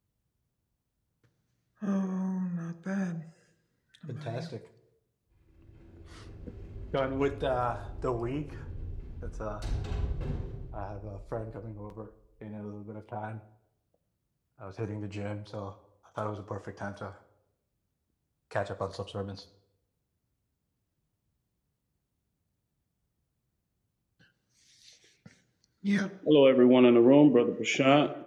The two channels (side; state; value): both; identical; correlation 1.00